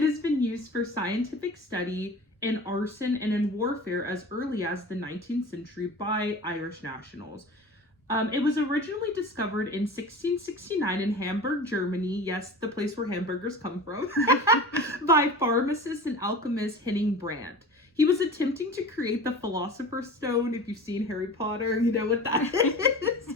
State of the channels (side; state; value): both; normal; correlation 0.36